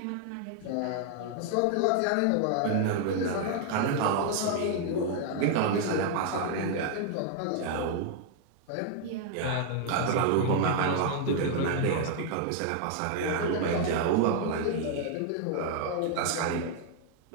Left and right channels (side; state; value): both; different; correlation 0.00